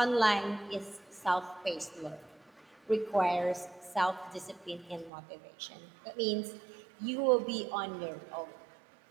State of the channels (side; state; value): left; drops out; at 5.1 s